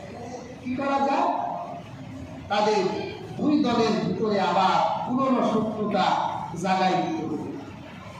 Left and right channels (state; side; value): identical; both; correlation 1.00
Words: কি করা যায়? তাদের দুই দলের ভিতরে আবার পুরনো শত্রুতা জাগাই দিতে হবে।